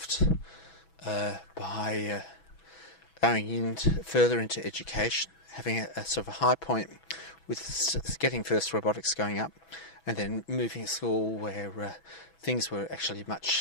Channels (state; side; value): late; right; 6.1 ms